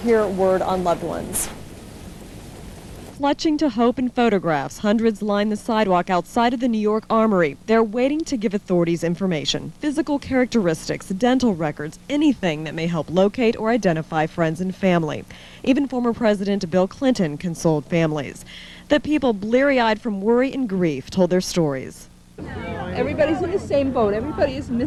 word on loved ones. Clutching to hope in photographs, hundreds line the sidewalk outside of the New York Armory. They're waiting to give authorities information, physical characteristics, dental records, anything that may help locate or identify friends and family. Even former President Bill Clinton consoled families. The people, bleary-eyed from worry and grief, told their stories. Everybody's in the same boat. Everybody is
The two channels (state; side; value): identical; both; correlation 1.00